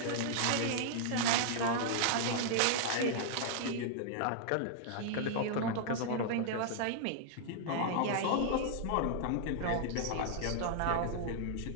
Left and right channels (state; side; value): different; both; correlation -0.01